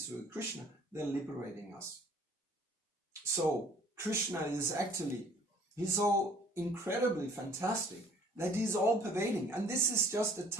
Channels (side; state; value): both; normal; correlation 0.55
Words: with Krishna, they're liberating us. So Krishna is actually, he's so incredibly fantastic that he's all pervading. And this is just a